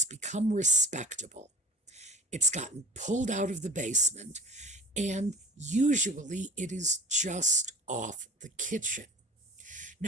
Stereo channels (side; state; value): both; normal; correlation 0.40